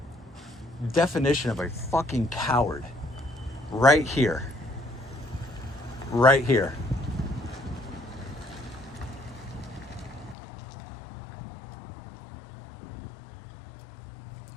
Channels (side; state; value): right; drops out; at 10.4 s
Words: Definition of a fucking coward. Right here. Right here.